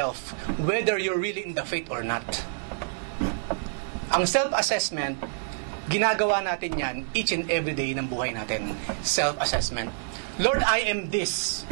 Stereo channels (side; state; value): left; silent; digital silence